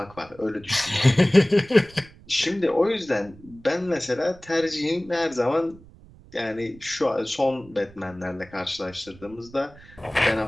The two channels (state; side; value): noise; right; rumble, 23 dB below the sound